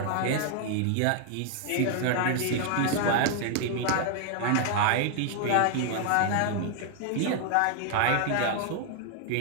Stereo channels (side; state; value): both; different; correlation 0.00